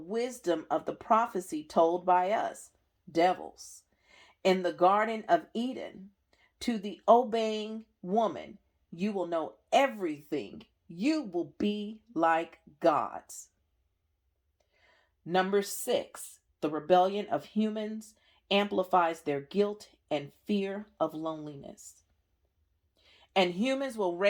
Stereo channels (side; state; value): both; identical; correlation 1.00